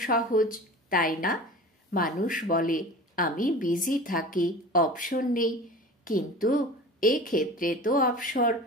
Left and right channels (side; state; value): both; normal; correlation 0.37